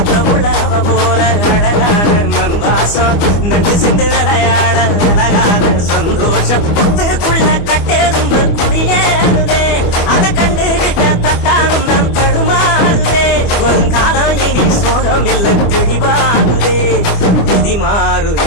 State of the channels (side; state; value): right; late; 25 ms